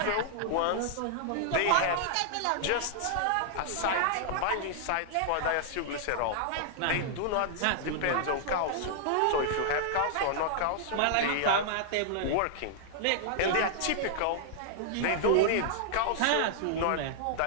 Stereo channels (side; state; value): both; different; correlation -0.01